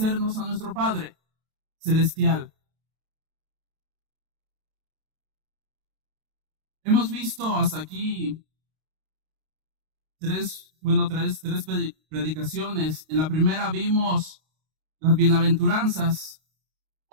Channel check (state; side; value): late; left; 32 ms